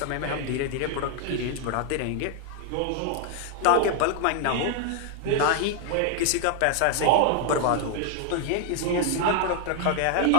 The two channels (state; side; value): different; both; correlation 0.00